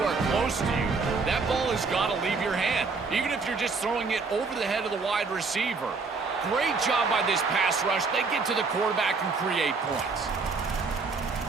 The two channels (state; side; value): quieter; left; 4.4 dB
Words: close to you, that ball has got to leave your hand, even if you're just throwing it over the head of the wide receiver. Great job by this pass rush. They get to the quarterback and create points.